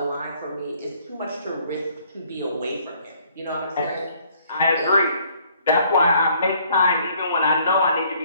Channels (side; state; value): both; inverted; correlation -0.62